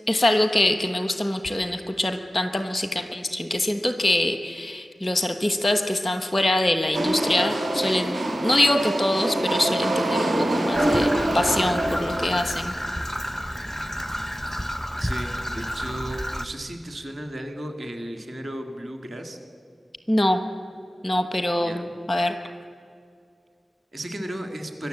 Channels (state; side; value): normal; both; correlation 0.95